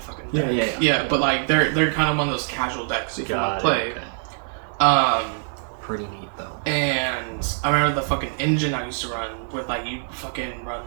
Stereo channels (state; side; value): silent; left; digital silence